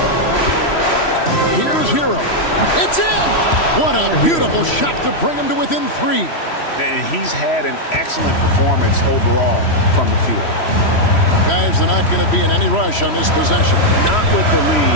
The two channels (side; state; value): right; late; 3.1 ms